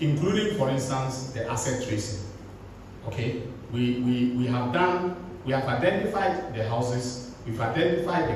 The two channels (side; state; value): both; identical; correlation 1.00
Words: including, for instance, the asset tracing. Okay, we have identified the houses, we've identified